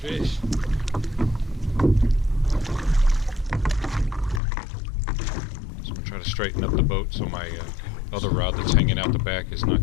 So I'm going to try to straighten up the boat so my other rod that's hanging out the back is not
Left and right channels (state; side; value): drops out; right; at 4.4 s